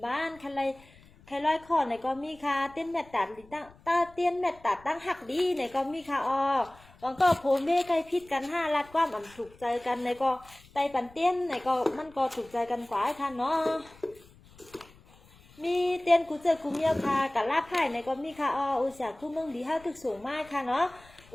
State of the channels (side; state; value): left; noise; rumble, 25 dB below the sound